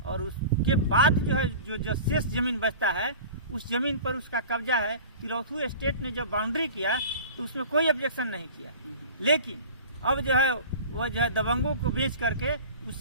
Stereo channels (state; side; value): inverted; both; correlation -0.39